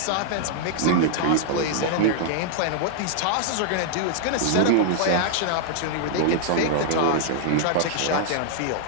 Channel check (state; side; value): different; both; correlation -0.01